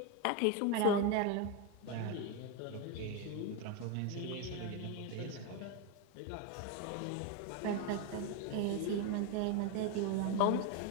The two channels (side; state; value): both; different; correlation 0.02